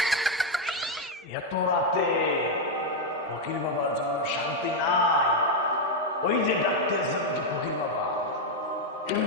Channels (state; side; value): normal; both; correlation 0.02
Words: এত রাতে ফকির বাবার জন্য শান্তি নাই। ওই যে ডাকতেছে নাকি ফকির বাবা,